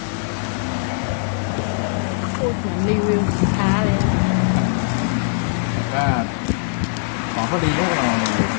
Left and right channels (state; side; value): silent; right; digital silence